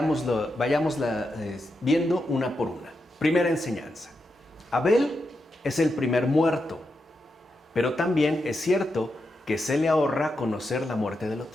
viendo una por una. Primera enseñanza. Abel es el primer muerto, pero también es cierto que se le ahorra conocer la muerte del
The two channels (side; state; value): both; normal; correlation 0.86